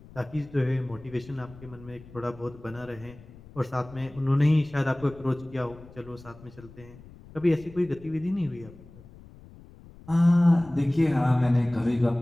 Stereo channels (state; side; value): noise; left; rumble, 20 dB below the sound